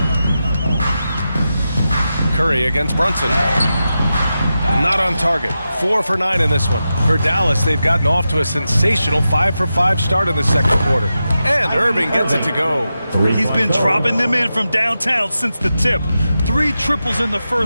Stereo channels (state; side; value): inverted; both; correlation -0.91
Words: Curry against Brunson. Not on target. 4 for 9 in this one. For Dallas, they've gotten off to a sensational 5 for 5 start in the second quarter. And Irving gets it to go. He's been dropping them in from downtown since the tip. 3 triples in the